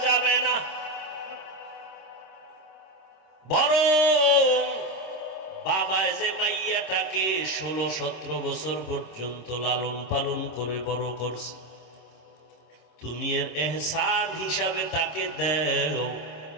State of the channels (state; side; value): late; right; 26 ms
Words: যাবে না। বরং বাবা যে মাইয়াটাকে 16-17 বছর পর্যন্ত লালন পালন করে বড় করছে, তুমি এর এহসান হিসাবে তাকে দেও।